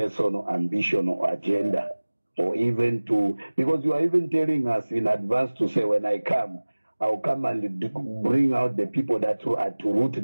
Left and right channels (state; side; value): inverted; both; correlation -1.00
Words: ambition or agenda, or even because you are even telling us in advance to say, when I come, I'll come and bring out the people that are to root